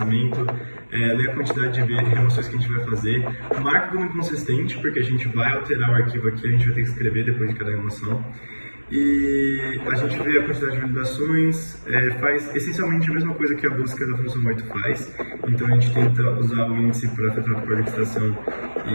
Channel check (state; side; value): inverted; both; correlation -1.00